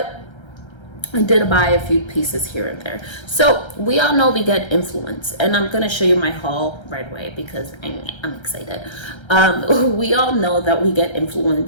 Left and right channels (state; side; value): late; right; 1.3 ms